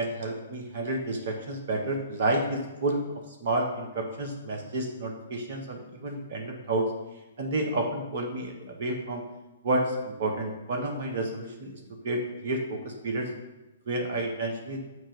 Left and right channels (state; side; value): inverted; both; correlation -0.48